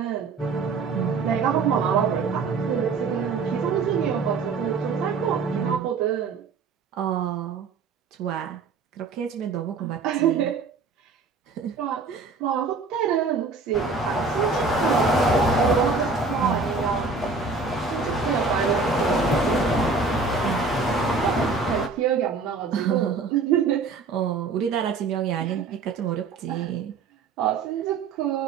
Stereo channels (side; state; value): left; quieter; 4.4 dB